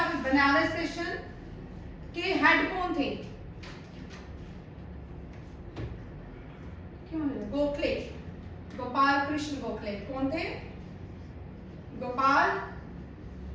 बनारस सेशन के हेड कौन थे? क्यों? गोखले, गोपाल कृष्ण गोखले। कौन थे? गोपाल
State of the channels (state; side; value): identical; both; correlation 1.00